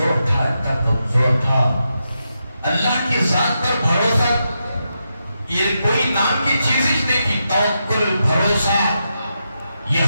تھا، اتنا کمزور تھا، اللہ کی ذات پر بھروسہ یہ کوئی نام کی چیز ہی نہیں تھی، توکل، بھروسہ،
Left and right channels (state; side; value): inverted; both; correlation -0.86